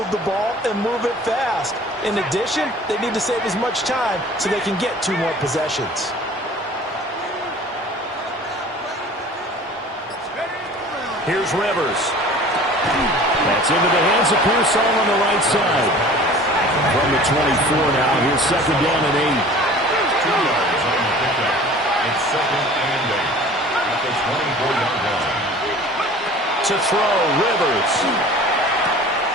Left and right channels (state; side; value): normal; both; correlation 0.45